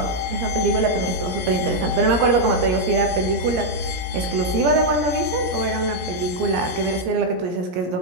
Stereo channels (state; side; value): late; left; 17 ms